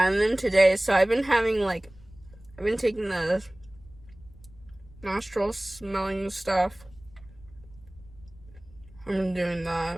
and then today, so I've been having, like, I've been taking the nostril smelling stuff. I've been doing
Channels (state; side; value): noise; left; rumble, 23 dB below the sound